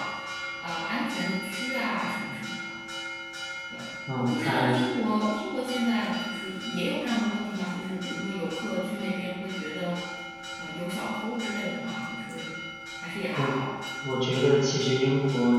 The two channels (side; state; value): both; identical; correlation 1.00